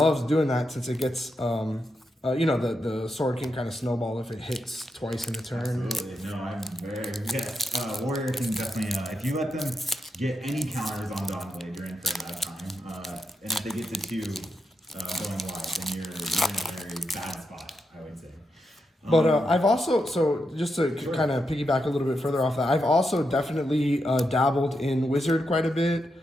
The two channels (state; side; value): normal; both; correlation 0.85